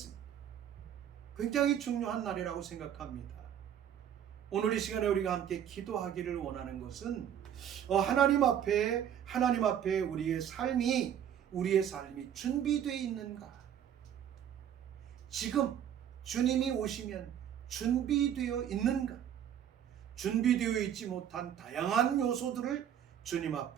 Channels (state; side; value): quieter; left; 9.6 dB